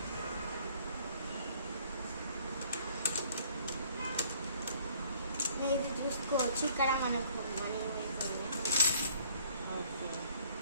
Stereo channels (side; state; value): both; inverted; correlation -0.59